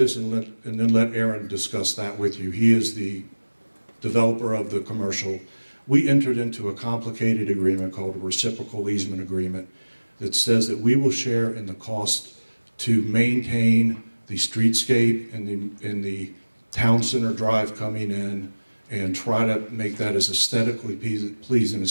and then let Aaron discuss that with you. He is the developer of the commercial. We entered into a complicated agreement called a Reciprocal Easement Agreement that says that we will share in the cost to maintain the streetscape and the town center drive coming in and try to make that as aesthetically pleasing as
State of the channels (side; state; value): both; inverted; correlation -1.00